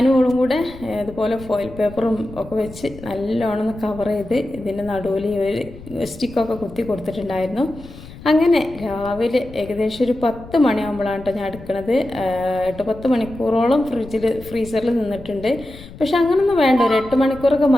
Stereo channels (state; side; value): noise; left; rumble, 17 dB below the sound